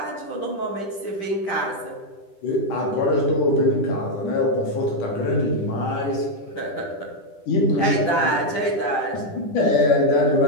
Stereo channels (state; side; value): late; right; 10 ms